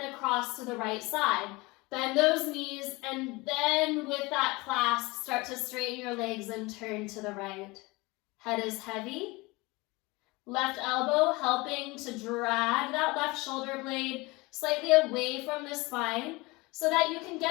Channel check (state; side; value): quieter; right; 23.5 dB